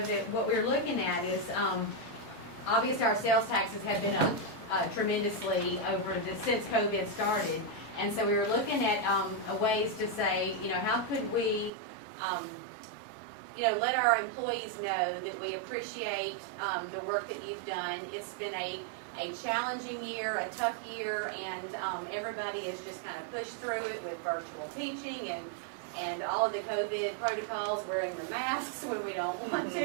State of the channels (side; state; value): left; drops out; at 11.7 s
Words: that what we're looking at is, obviously our sales taxes have been up tremendously since COVID started. And so we were looking at ways to say, you know, how could we, you know, let our employees know that we appreciate the work that you've done. It's been a challenging year, a tough year, and everybody has just kind of pushed through it with virtual teaching and all of the COVID protocols, wearing the masks when we don't want